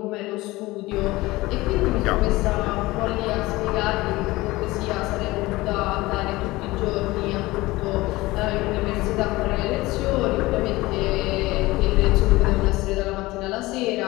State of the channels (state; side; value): quieter; right; 19.9 dB